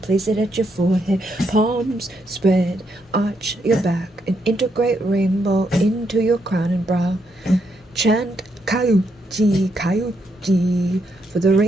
Place it at your forehead. Palms spread. Arch your back. And integrate rainbow into your crown and brow. Chant Kayuchi, Kayuchi for the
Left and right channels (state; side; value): normal; both; correlation 0.78